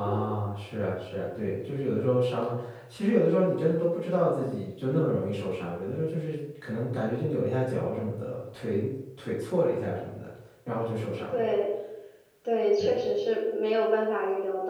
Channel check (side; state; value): both; identical; correlation 1.00